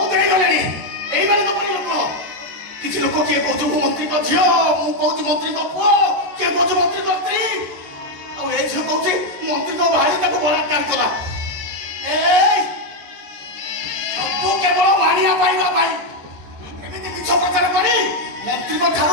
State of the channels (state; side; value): late; left; 14 ms